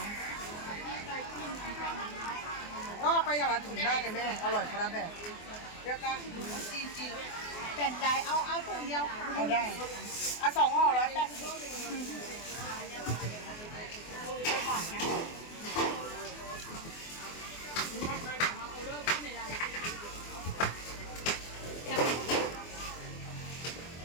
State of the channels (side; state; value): right; late; 24 ms